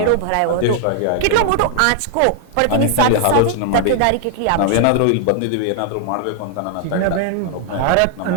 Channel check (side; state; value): both; different; correlation -0.01